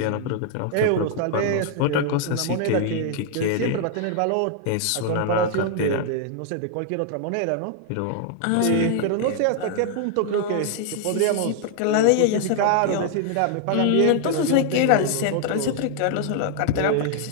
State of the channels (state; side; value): different; both; correlation 0.00